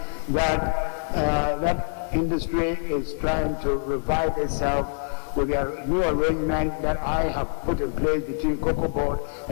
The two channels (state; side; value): silent; right; 62 dB below the other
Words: that that industry is trying to revive itself with a new arrangement that I have put in place between Cocoa Board